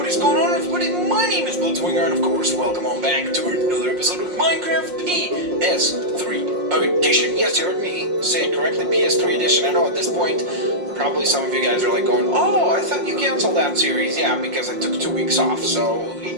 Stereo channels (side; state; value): left; late; 5.6 ms